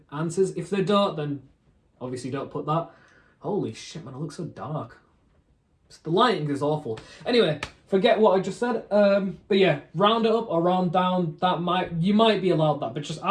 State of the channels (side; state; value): both; identical; correlation 1.00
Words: answers. If they don't, then obviously don't put that. Holy shit, man, it looks so dark. The lighting is awful. Anyway, forget what I just said. But yeah, round it up or round down. You might be allowed that, but just